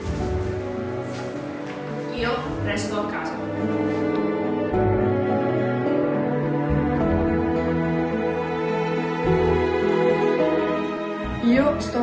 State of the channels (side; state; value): both; identical; correlation 1.00